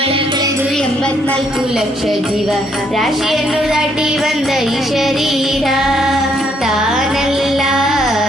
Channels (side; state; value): both; normal; correlation 0.71